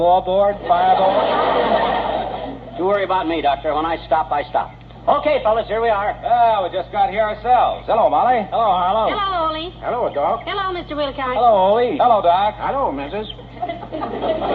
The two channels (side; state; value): both; identical; correlation 1.00